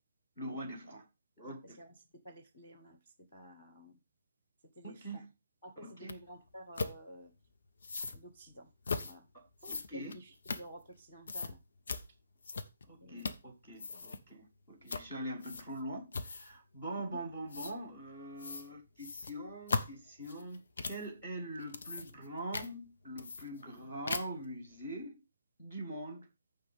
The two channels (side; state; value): both; inverted; correlation -0.73